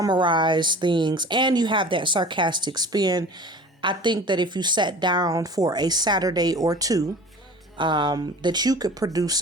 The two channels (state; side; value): normal; both; correlation 0.41